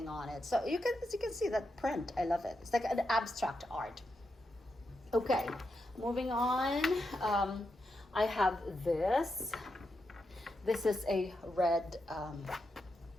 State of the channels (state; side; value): normal; both; correlation 0.85